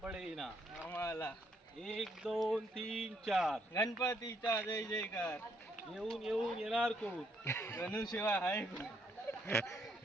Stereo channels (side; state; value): both; normal; correlation 0.72